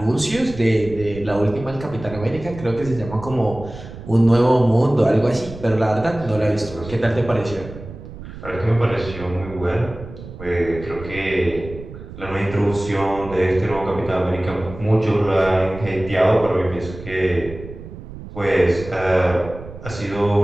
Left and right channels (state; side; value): noise; right; rumble, 13 dB below the sound